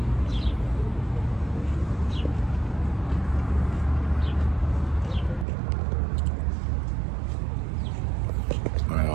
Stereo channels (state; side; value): drops out; left; at 5.5 s